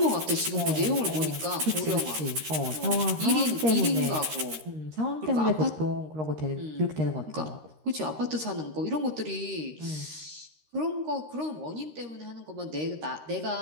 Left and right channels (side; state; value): left; late; 13 ms